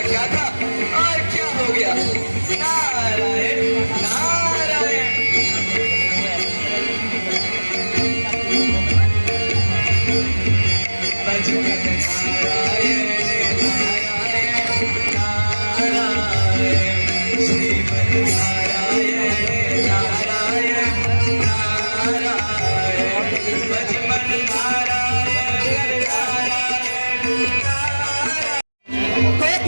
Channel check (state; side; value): inverted; both; correlation -1.00